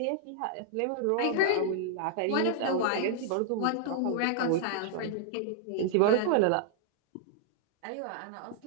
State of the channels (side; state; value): both; different; correlation -0.01